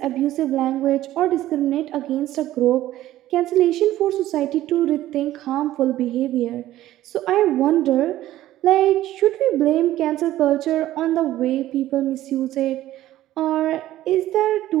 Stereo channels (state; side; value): quieter; left; 14.3 dB